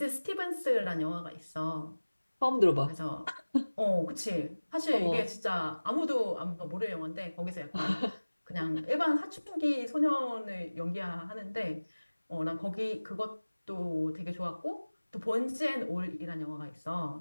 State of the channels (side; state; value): both; inverted; correlation -1.00